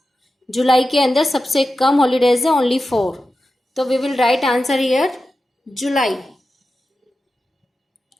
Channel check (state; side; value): normal; both; correlation 0.92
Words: जुलाई के अंदर सबसे कम हॉलीडेज है, ओनली 4। तो we will write answer here July,